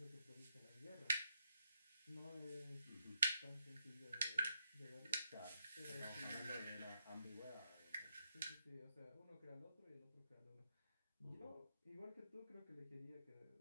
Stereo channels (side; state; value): both; inverted; correlation -0.81